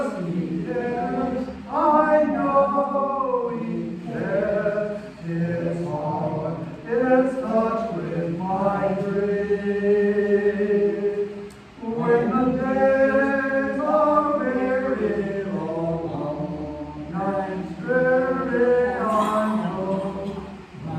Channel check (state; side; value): identical; both; correlation 1.00